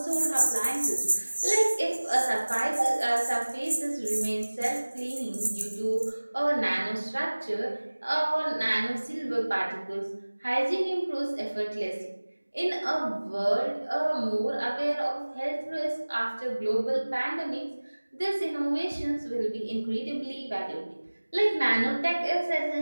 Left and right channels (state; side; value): inverted; both; correlation -1.00